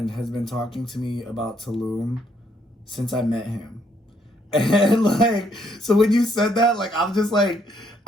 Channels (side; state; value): both; normal; correlation 0.71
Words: has been talking to me about Tulum since I met him. And like, so when you said that, like, I'm just like,